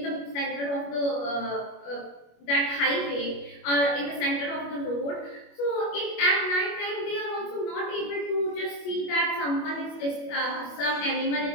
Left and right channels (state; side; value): late; right; 25 ms